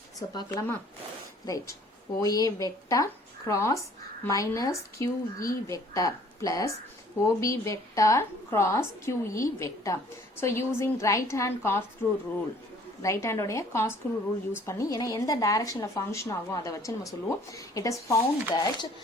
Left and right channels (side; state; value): both; normal; correlation 0.56